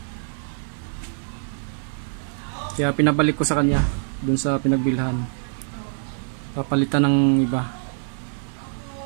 Kaya pinabalik ko sa kanya dun sa pinagbilhan. Papalitan ng iba.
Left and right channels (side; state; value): left; silent; digital silence